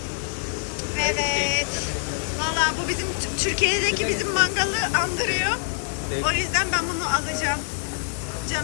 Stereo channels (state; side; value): silent; right; digital silence